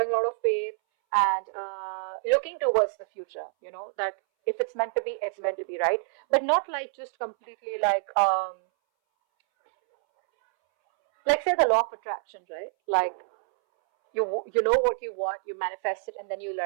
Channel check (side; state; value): left; silent; 60 dB below the other